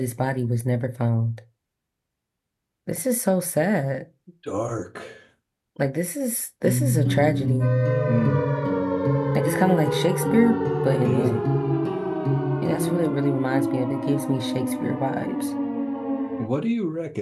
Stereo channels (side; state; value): both; identical; correlation 1.00